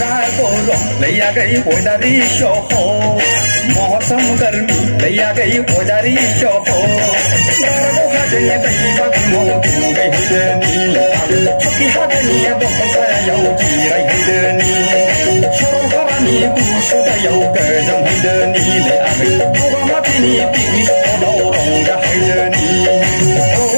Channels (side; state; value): both; inverted; correlation -1.00